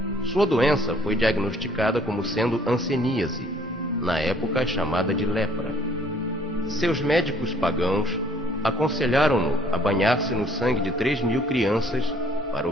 Sua doença foi diagnosticada como sendo hanseníase, na época chamada de lepra. Seus médicos pagãos aconselharam-no a banhar-se no sangue de 3.000 crianças para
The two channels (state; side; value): normal; both; correlation 0.60